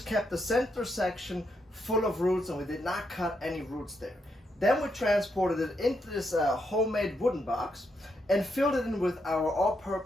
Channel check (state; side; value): normal; both; correlation 0.80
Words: kept the center section full of roots, and we did not cut any roots there. Then we transported it into this homemade wooden box and filled it in with our